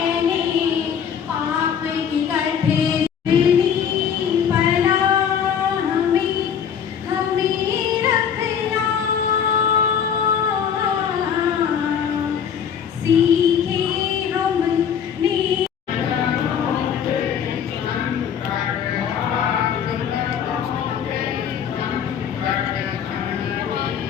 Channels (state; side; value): quieter; right; 8.0 dB